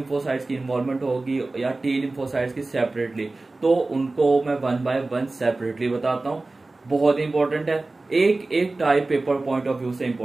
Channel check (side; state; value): left; quieter; 3.2 dB